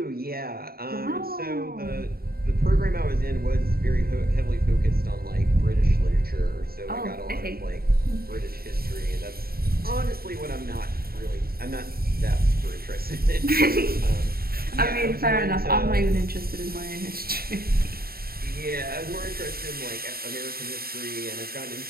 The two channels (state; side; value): late; left; 0.44 ms